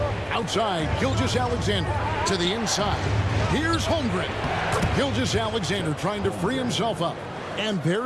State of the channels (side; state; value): both; identical; correlation 1.00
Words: Outside, Gilgeous-Alexander to the inside. Here's Holmgren. Gilgeous-Alexander trying to free himself up. And